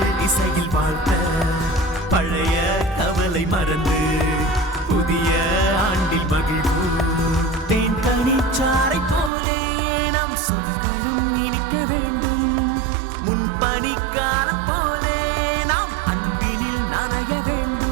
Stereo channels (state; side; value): drops out; left; at 9.3 s